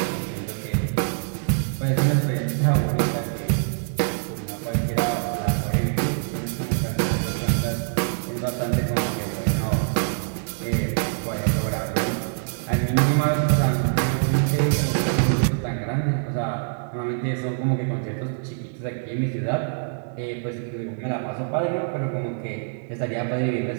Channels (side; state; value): left; silent; digital silence